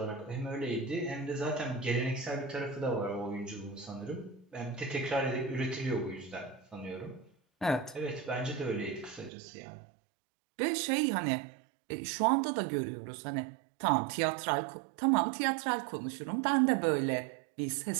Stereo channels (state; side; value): drops out; left; at 9.3 s